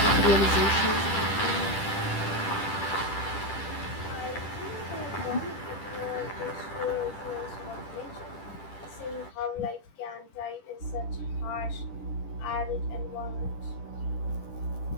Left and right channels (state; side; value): late; right; 10 ms